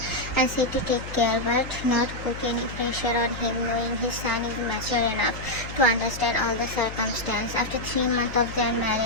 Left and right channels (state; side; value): noise; left; hum, 11 dB below the sound